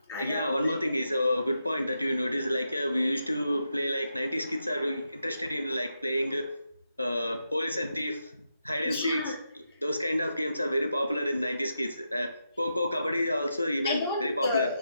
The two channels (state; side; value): inverted; both; correlation -0.85